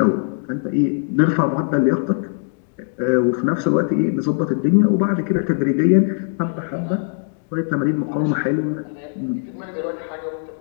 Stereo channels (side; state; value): right; silent; digital silence